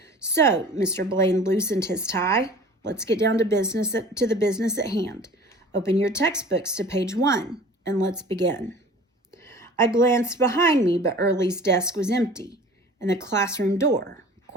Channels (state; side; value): normal; both; correlation 0.44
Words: So, Mr. Blaine loosened his tie. Let's get down to the business at hand. Open your textbooks to page 1, and let's begin. I glanced behind me, but Early's desk was empty, and the classroom door